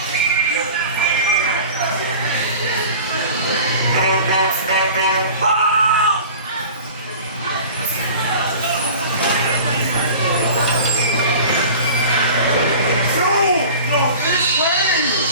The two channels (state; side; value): inverted; both; correlation -0.40